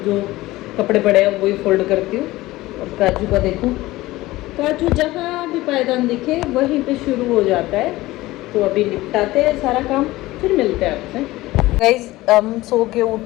जो कपड़े पड़े हैं वही फोल्ड करती हूँ। और काजू का देखूँ, काजू जहाँ भी पायदान दिखे वहीं पे शुरू हो जाता है। तो अभी निपटाते हैं सारा काम, फिर मिलते हैं आपसे। गाइस हम सो के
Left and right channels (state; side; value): quieter; right; 18.3 dB